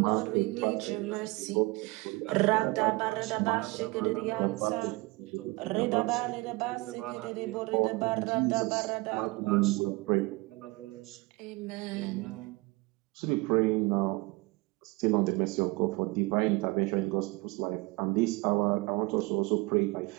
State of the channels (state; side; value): quieter; left; 23.9 dB